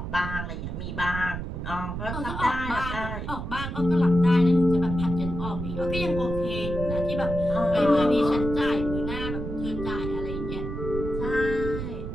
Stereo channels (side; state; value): right; noise; rumble, 6 dB below the sound